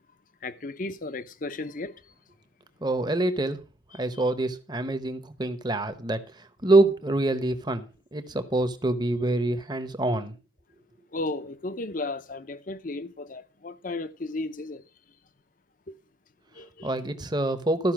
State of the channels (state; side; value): normal; both; correlation 0.70